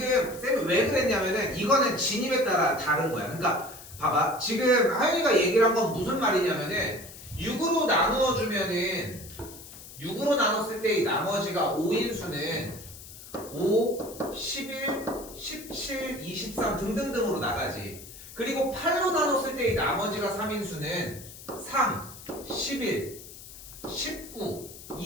쌤이 왜 그랬냐면은 이거는 진입에 따라 다른 거야. 그러니까 봐봐 지금 하윤이가 얘기를 한 건 무슨 말이냐면은 6으로 나누어주면은 6으로 나눴을 때 이 나머지가 5인 수는 5, 11, 17, 23 등등등으로 나가지. 그리고 8로 나눴을 때 이 나머지가 3인 수는 3, 11, 19,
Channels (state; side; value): noise; left; hiss, 16 dB below the sound